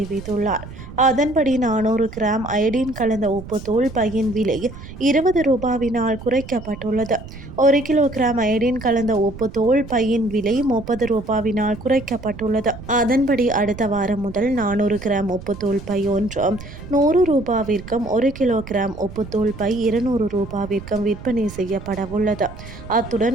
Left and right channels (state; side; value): noise; right; rumble, 14 dB below the sound